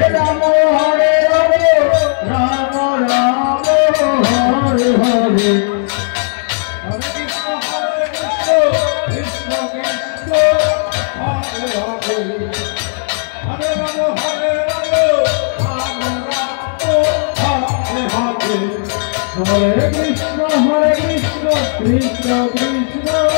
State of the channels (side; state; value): right; silent; digital silence